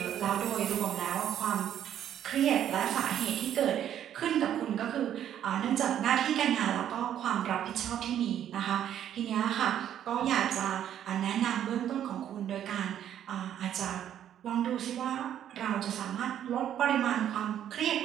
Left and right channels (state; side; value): quieter; left; 10.4 dB